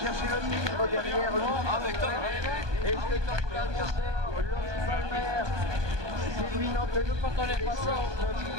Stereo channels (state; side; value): late; left; 1.2 ms